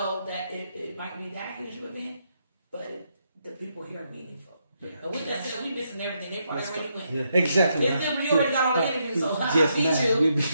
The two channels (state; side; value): inverted; both; correlation -0.79